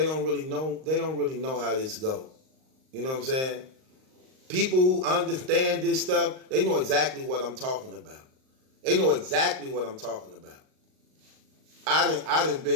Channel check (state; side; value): late; left; 38 ms